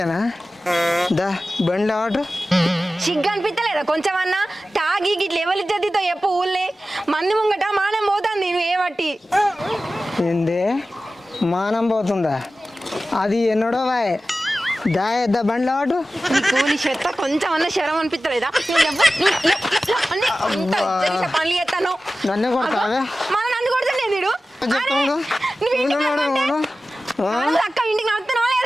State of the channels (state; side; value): normal; both; correlation 0.95